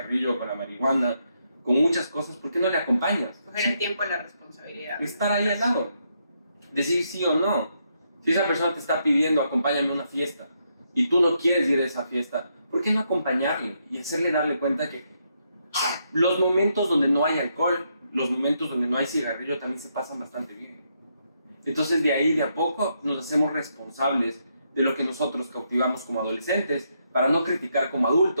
con la marihuana, con muchas cosas, ¿por qué no le acompañas? Coger el tiempo y la responsabilidad. Estar ahí al lado, decir sí o no. Si esa persona te está pidiendo, acompáñame a una fiesta, y tú no quieres ir a esa fiesta, ¿por qué no acompañarle y hacerle darle cuenta que los momentos donde no hay alcohol, los momentos donde no hay cigarrillo también se pasan bastante bien? Entonces de ahí de a poco nos hacemos responsables de lo que nosotros cautivamos como adolescentes para no criticar como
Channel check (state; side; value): inverted; both; correlation -0.78